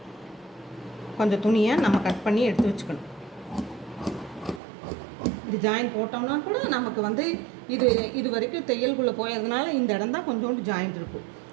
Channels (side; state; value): left; drops out; at 4.6 s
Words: கொஞ்சம் துணியை நம்ம கட் பண்ணி எடுத்து வச்சுக்கணும். இது ஜாயின் போட்டோம்னா கூட நமக்கு வந்து இது வரைக்கும் தையல்குள்ளே போயதுனால இந்த இடம் தான் கொஞ்சோண்டு ஜாயிண்ட் இருக்கும்.